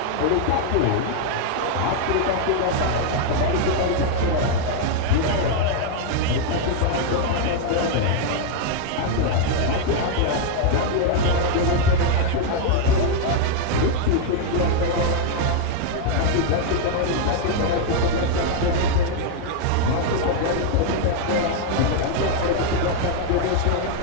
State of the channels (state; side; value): different; both; correlation 0.00